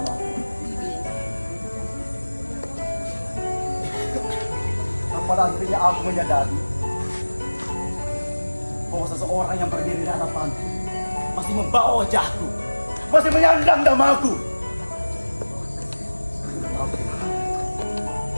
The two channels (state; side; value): inverted; both; correlation -1.00